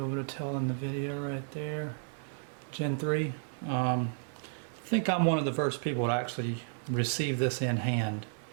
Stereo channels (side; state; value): left; silent; digital silence